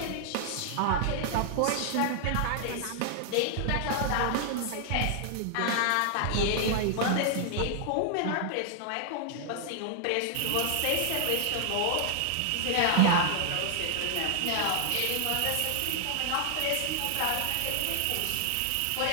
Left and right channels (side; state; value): both; different; correlation 0.00